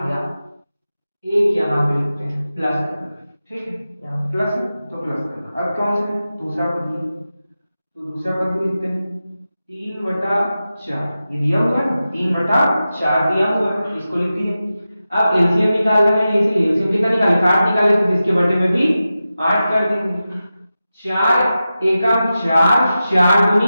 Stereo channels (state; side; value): inverted; both; correlation -0.93